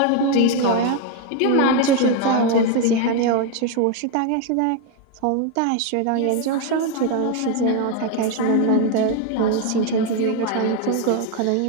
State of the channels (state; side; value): different; both; correlation 0.01